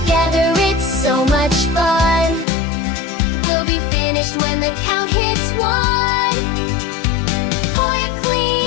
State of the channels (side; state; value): right; drops out; at 2.5 s